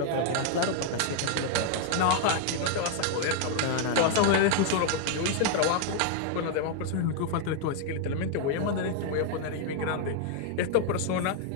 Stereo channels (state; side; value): different; both; correlation 0.00